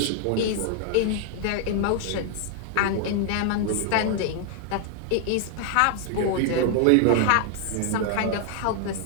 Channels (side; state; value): both; different; correlation 0.00